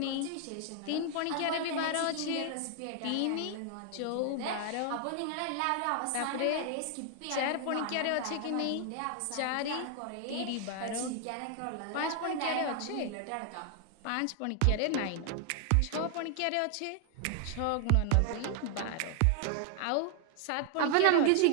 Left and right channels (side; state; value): both; different; correlation 0.00